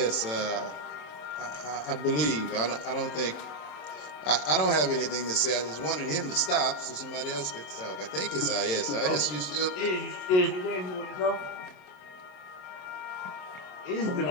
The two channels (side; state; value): right; late; 27 ms